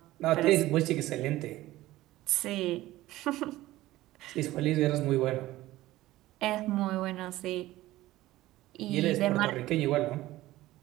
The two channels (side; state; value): left; quieter; 16.6 dB